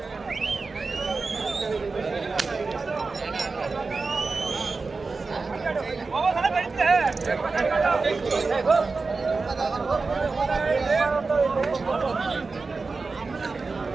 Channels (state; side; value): quieter; left; 4.1 dB